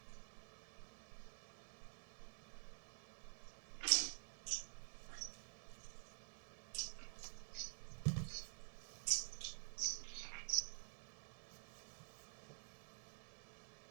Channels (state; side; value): silent; left; digital silence